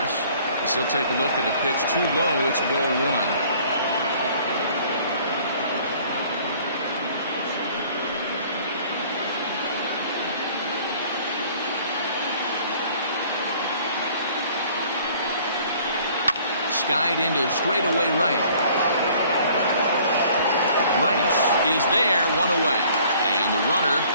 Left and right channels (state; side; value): inverted; both; correlation -0.55